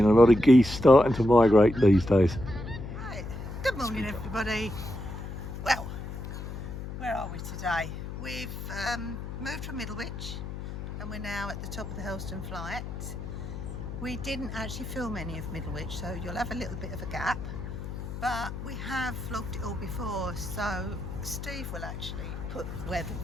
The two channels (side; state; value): left; noise; hum, 8 dB below the sound